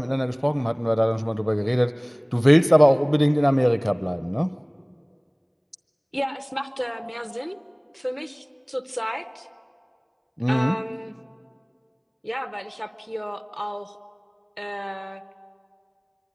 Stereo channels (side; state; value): both; identical; correlation 1.00